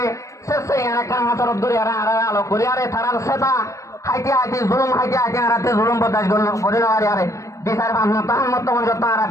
শেষে একটা হাতের দূরে আর আলো করি আরে তারার সেটা হাইতে জুলুম হাইতে আরাতে জুলুম বদাস করি না আরে বিচার তাহার মতো যত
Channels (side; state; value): right; late; 0.15 ms